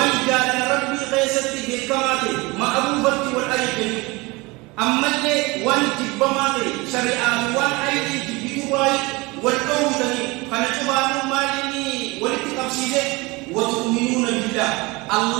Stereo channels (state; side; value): quieter; left; 24.1 dB